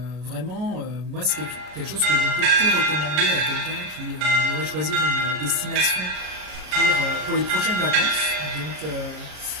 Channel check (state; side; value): late; left; 33 ms